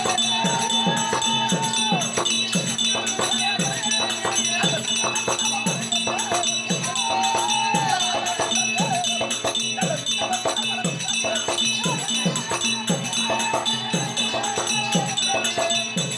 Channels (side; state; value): both; identical; correlation 1.00